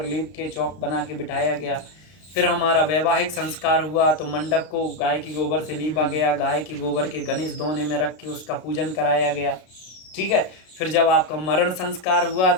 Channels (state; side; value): late; right; 33 ms